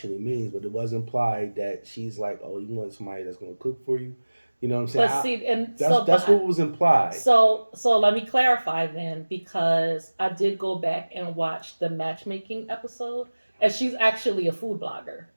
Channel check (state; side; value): inverted; both; correlation -1.00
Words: means, but it was implied that she's like, oh, you want somebody that's gonna cook for you. You know what I'm saying? But see, and That's so, that's what was implied. so let me clarify then, because I did go back and watch the matchmaking episode, and she's actually a food blogger.